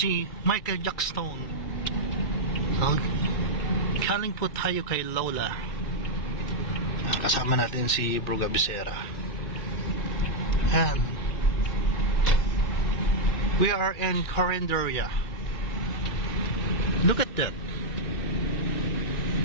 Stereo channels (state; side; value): late; right; 2.3 ms